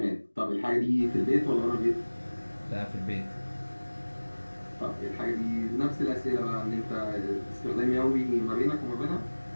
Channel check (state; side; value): inverted; both; correlation -1.00